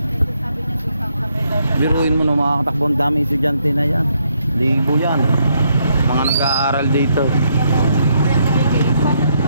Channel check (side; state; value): both; inverted; correlation -0.75